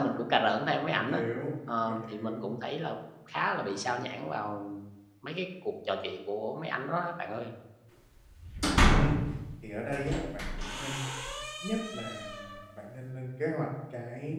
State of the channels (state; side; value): identical; both; correlation 1.00